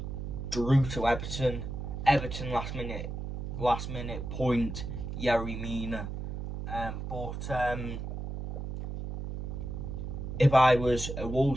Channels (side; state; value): right; noise; hum, 6 dB below the sound